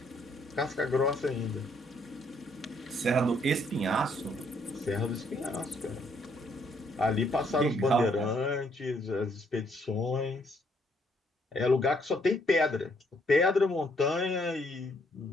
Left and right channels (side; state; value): both; normal; correlation 0.69